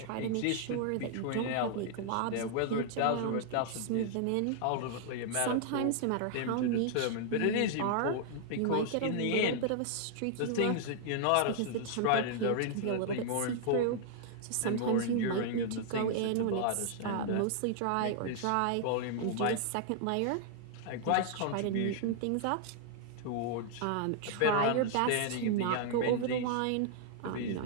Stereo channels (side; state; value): both; different; correlation -0.01